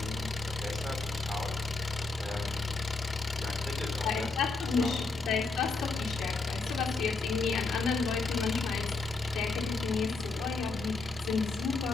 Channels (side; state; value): right; quieter; 3.8 dB